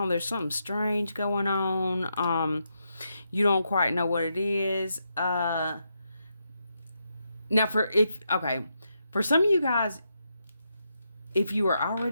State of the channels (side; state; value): both; inverted; correlation -0.82